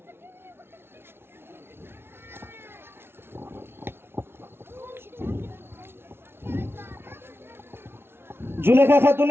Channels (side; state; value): left; late; 0.12 ms